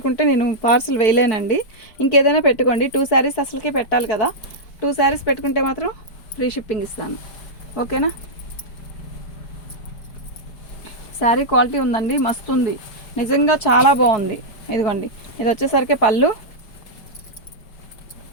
నేను పార్సిల్ వేయలేనండి. ఇంకేదైనా పెట్టుకోండి. 2 శారీస్ అసలుకి పెట్టాలి కదా. 2 శారీస్ పెట్టుకుంటే మాత్రం ఫ్రీ షిప్పింగ్ ఇస్తాను. ఓకేనా? శారీ క్వాలిటీ ఉందండి, మస్తు ఉంది నిజంగా, చాలా బాగుంది. ఇదిగోండి, ఇది వచ్చేసరికి పళ్ళు,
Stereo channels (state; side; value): late; right; 4.6 ms